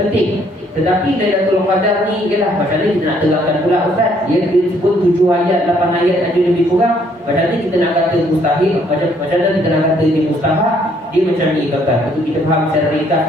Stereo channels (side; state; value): both; normal; correlation 0.66